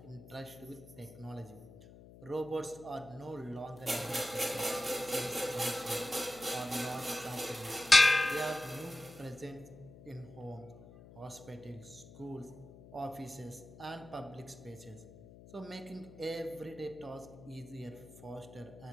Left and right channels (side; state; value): left; noise; hum, 18 dB below the sound